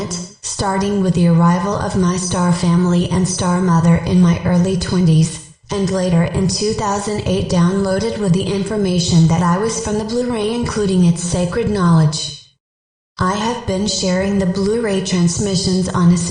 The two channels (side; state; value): both; identical; correlation 1.00